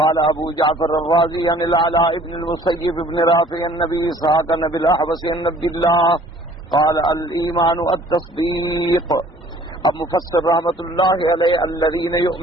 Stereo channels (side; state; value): both; normal; correlation 0.54